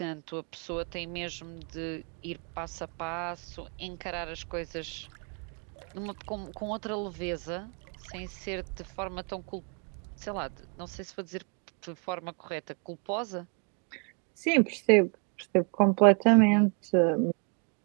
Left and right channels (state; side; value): quieter; left; 39.1 dB